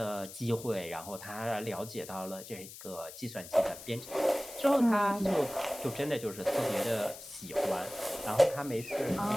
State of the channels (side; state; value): left; noise; hiss, 14 dB below the sound